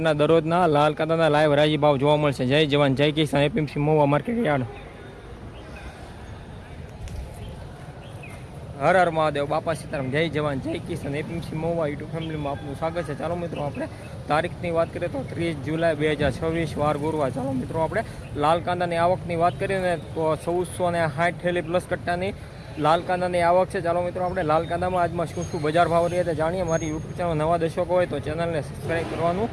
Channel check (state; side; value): identical; both; correlation 1.00